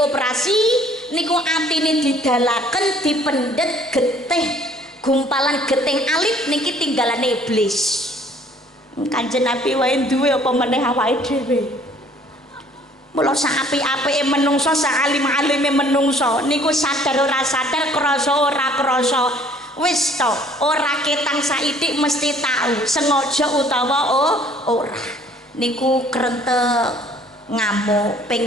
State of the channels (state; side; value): normal; both; correlation 0.57